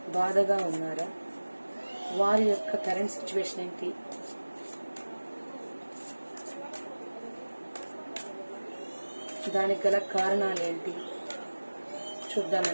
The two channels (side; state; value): both; inverted; correlation -1.00